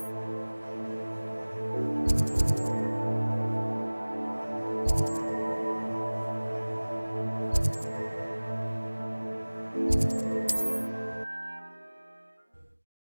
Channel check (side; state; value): both; inverted; correlation -1.00